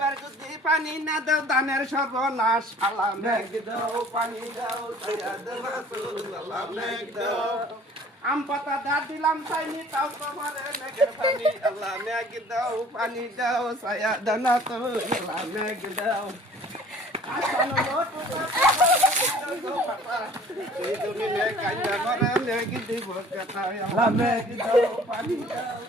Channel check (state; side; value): normal; both; correlation 0.51